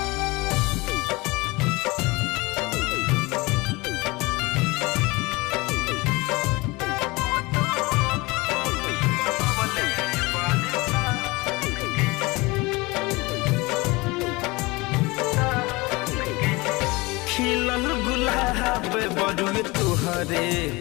खिलल गुलाब बड़ुए तुहरे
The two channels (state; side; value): quieter; right; 23.6 dB